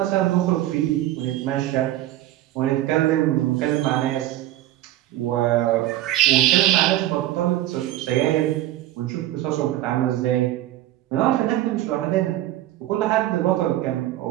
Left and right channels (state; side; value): quieter; left; 14.4 dB